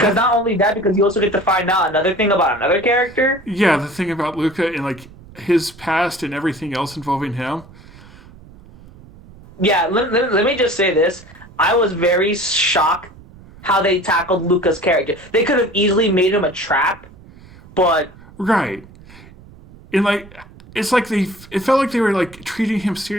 not only that, because you also get to find out another thing about another character. Yeah, the thing about Luca and like his past and everything else involving him. Yeah, let me just say this. I was very shocked how they tackled Luca's character. They could have easily made him a trap, but... Right. And like, it's like it felt like they were like treating him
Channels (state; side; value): noise; right; rumble, 22 dB below the sound